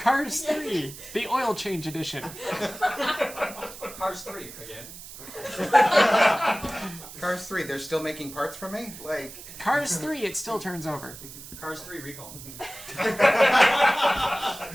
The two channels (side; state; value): right; noise; hiss, 14 dB below the sound